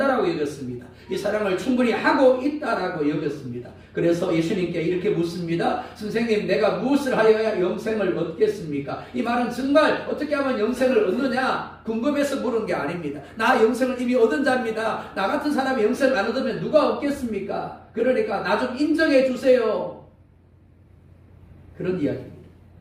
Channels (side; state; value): both; identical; correlation 1.00